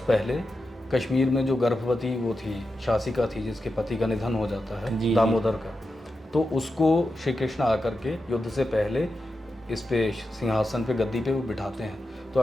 पहले कश्मीर में जो गर्भवती वो थी, शासिका थी, जिसके पति का निधन हो जाता है, दामोदर का, तो उसको श्री कृष्ण आकर के युद्ध से पहले इस पे सिंहासन पे, गद्दी पे वो बिठाते हैं। तो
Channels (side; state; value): both; normal; correlation 0.90